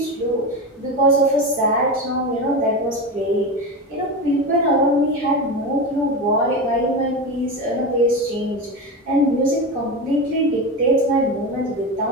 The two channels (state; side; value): normal; both; correlation 0.21